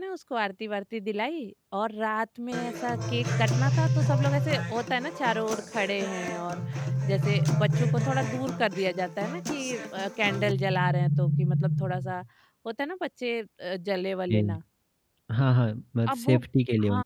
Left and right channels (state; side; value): identical; both; correlation 1.00